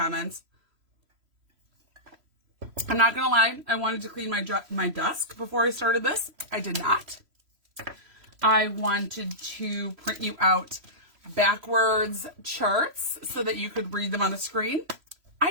I'm not going to lie. I wanted to clean my desk before I started this. I did not. I wanted to print you out backwards charts so that you could read them on the screen.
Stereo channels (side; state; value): left; late; 3.0 ms